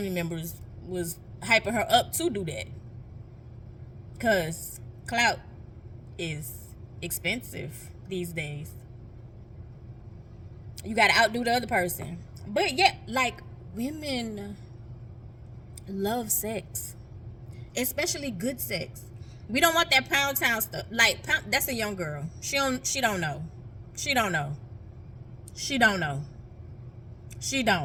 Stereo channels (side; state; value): both; identical; correlation 1.00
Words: members was hyping her up to do that, because clout is expensive these days. You gotta outdo the other person. But yeah, like, women love sex, especially good sex. We don't want that pound town stuff. Like, that's a young girl. She don't know. She don't know. She don't know. She